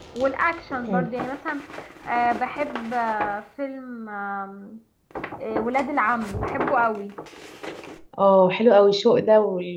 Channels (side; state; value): both; identical; correlation 1.00